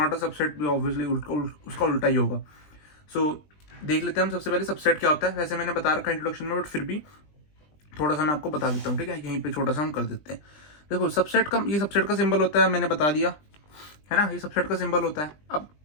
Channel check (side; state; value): right; late; 20 ms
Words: अ सबसेट भी ऑब्वियसली उसका उल्टा ही होगा। सो देख लेते हैं हम सबसे पहले सबसेट क्या होता है। वैसे मैंने बता रखा है इंट्रोडक्शन में, बट फिर भी थोड़ा सा मैं आपको बता देता हूँ, ठीक है। यहीं पे छोटा सा हम कर देते हैं। देखो सबसेट का, ये सबसेट का सिंबल होता है, मैंने बता दिया है ना, ये सबसेट का सिंबल होता है। अब